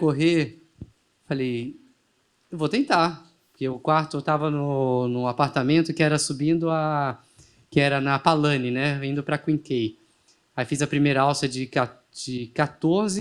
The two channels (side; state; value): both; identical; correlation 1.00